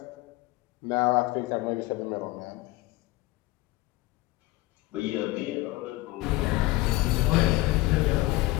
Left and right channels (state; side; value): quieter; right; 19.3 dB